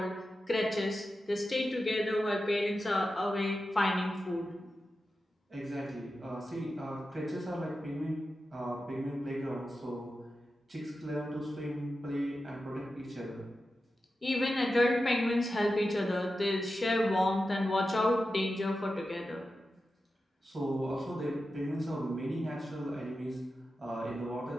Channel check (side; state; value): both; normal; correlation 0.91